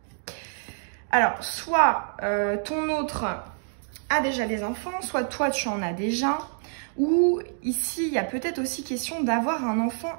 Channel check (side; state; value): left; silent; 60 dB below the other